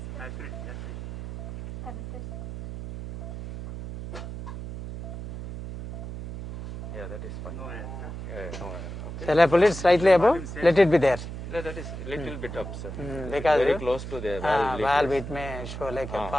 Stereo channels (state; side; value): noise; right; hum, 8 dB below the sound